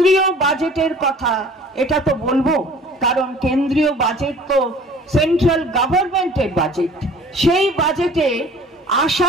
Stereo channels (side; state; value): both; normal; correlation 0.48